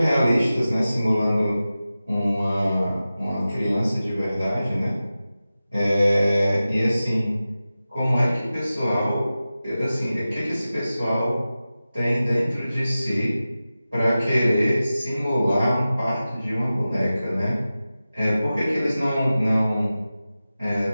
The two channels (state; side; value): inverted; both; correlation -0.95